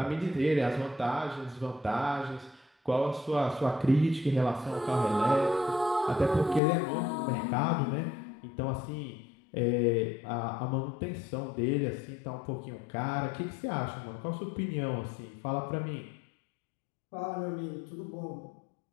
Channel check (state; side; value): drops out; right; at 6.6 s